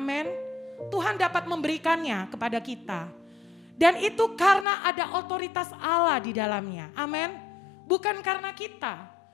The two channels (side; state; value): right; drops out; at 4.7 s